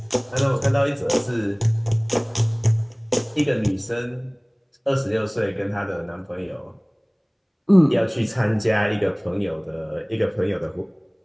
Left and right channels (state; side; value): identical; both; correlation 1.00